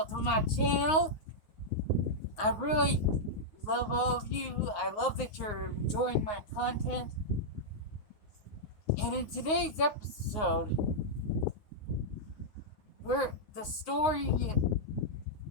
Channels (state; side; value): late; right; 9.5 ms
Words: to my channel. I really love all of you. I love that you're enjoying my content. And in today's episode, the story